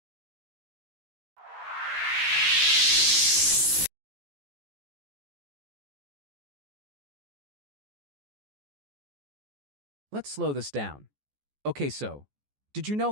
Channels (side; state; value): left; late; 14 ms